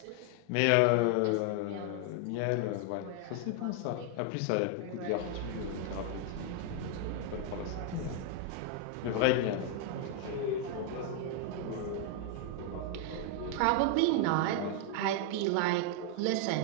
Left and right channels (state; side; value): different; both; correlation 0.00